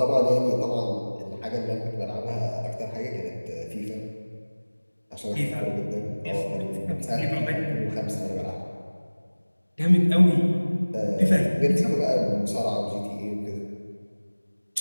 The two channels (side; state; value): both; inverted; correlation -1.00